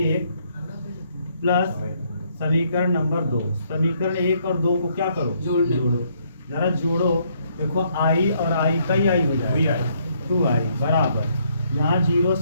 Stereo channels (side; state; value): both; inverted; correlation -0.70